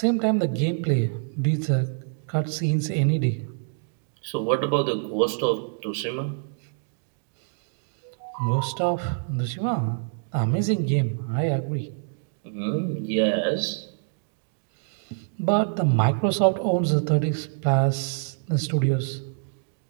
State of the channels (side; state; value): left; silent; 61 dB below the other